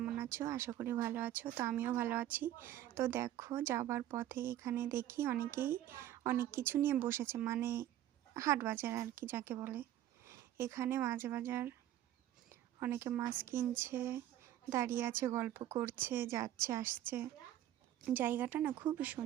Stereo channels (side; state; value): left; quieter; 12.6 dB